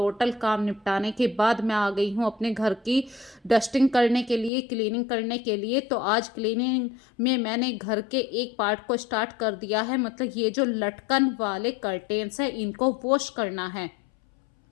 काम निपटाने के बाद मैं आ गई हूँ अपने घर की डस्टिंग करने के लिए, क्लीनिंग करने के लिए। तो आज क्लीनिंग में मैंने घर के एक पार्ट को स्टार्ट कर दिया है, मतलब ये जो लटकन वाले कर्टेन्स हैं इनको वॉश करना है।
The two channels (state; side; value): drops out; right; at 4.5 s